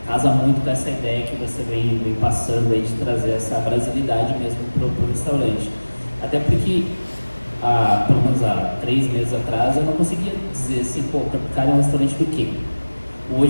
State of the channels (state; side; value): inverted; both; correlation -1.00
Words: casa muito com essa ideia que você vem passando aí de trazer essa brasilidade mesmo para o restaurante. Até porque, pelo menos há 3 meses atrás, eu não conseguia dizer assim, pô, o Tropicália é um restaurante do quê?